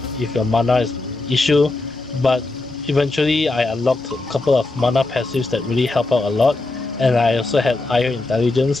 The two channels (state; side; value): quieter; right; 3.1 dB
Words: if your mana is an issue, but eventually I unlocked a couple of mana passives that really help out a lot, and I also had higher intelligence